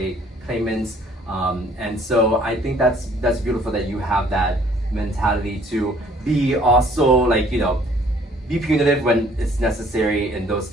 claimants. And so I think that's beautiful that you have that mentality to be also be punitive when it's necessary in those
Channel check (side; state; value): both; normal; correlation 0.58